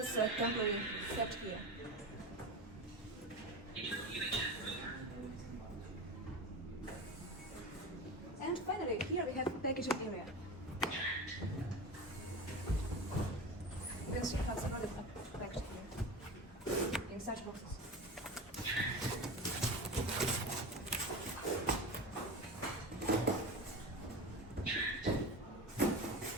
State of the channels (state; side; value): normal; both; correlation 0.27